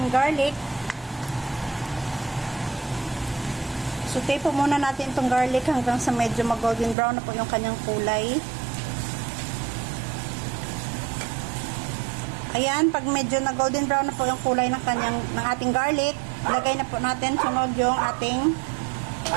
garlic. Saute po muna natin itong garlic hanggang sa medyo mag-golden brown na po yung kanyang kulay. Ayan, pag medyo na-golden brown na po yung kulay ng ating garlic, ilagay na po natin sunod yung ating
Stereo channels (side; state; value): left; drops out; at 7.0 s